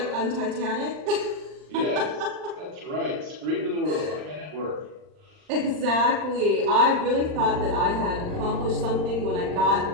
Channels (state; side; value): late; left; 39 ms